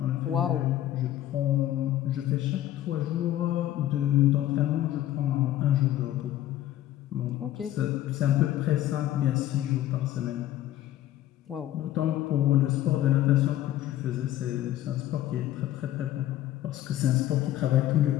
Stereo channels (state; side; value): quieter; right; 13.2 dB